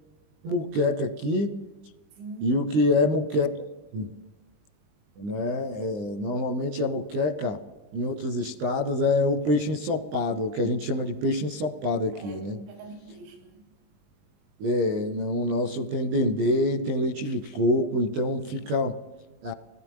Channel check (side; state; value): left; late; 20 ms